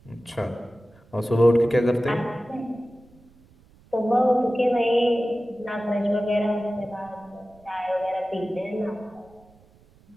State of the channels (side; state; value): right; noise; rumble, 28 dB below the sound